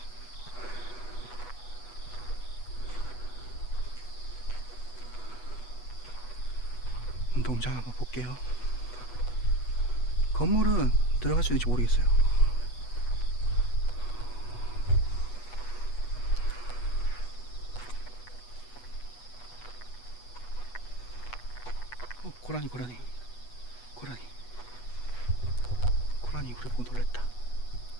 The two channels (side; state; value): right; late; 8.2 ms